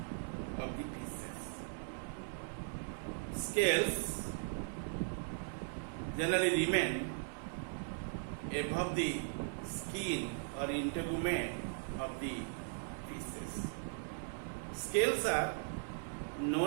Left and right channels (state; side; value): silent; left; 52 dB below the other